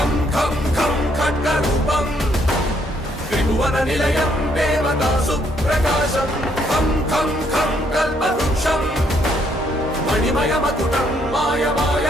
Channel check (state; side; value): normal; both; correlation 0.70